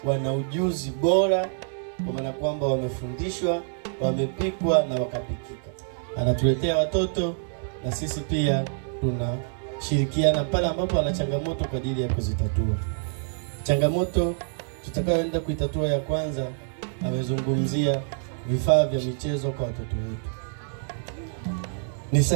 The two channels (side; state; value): left; silent; digital silence